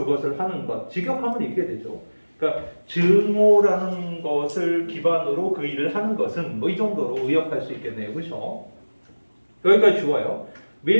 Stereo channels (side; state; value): both; inverted; correlation -1.00